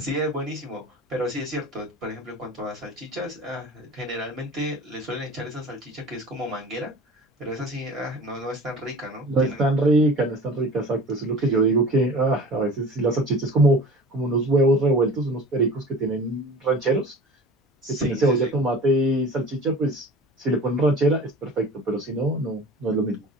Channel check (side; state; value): both; normal; correlation 0.40